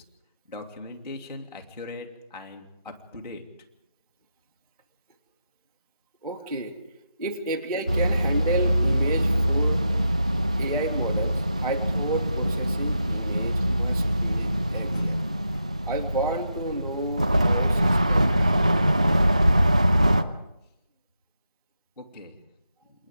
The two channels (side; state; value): both; inverted; correlation -0.86